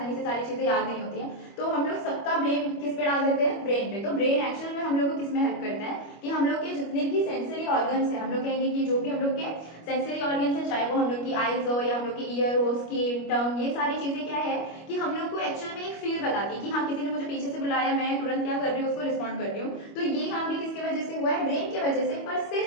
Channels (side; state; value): right; late; 25 ms